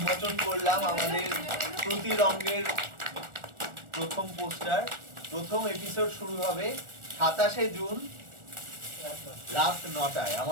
করলাম আমাদের শ্রুতি রঙ্গের প্রথম পোস্টার। প্রথম এপিসোড শুরু হবে 27শে জুন রাত 9টায়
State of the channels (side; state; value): left; late; 1.4 ms